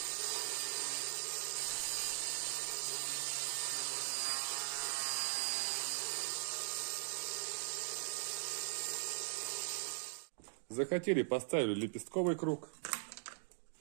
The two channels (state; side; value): silent; left; digital silence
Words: Захотели, поставили лепестковый круг.